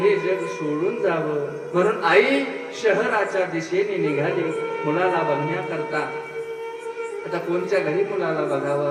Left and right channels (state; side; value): identical; both; correlation 1.00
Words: जग सोडून जावं. म्हणून आई शहराच्या दिशेने निघाली मुलाला बघण्याकरता. आता कोणत्या घरी मुलाला